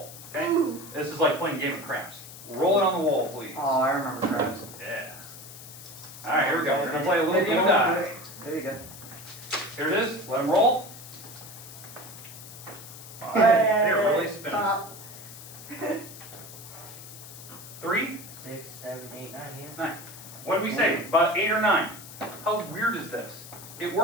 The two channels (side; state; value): left; noise; hiss, 15 dB below the sound